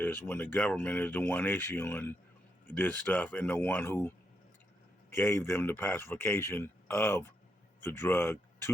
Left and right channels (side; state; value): both; normal; correlation 0.81